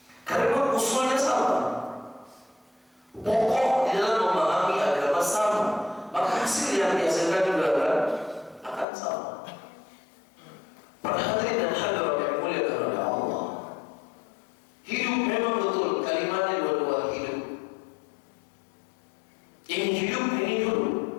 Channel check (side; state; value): right; drops out; at 8.8 s